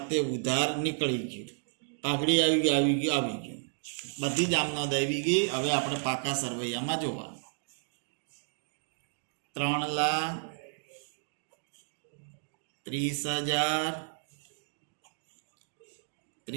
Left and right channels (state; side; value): silent; left; digital silence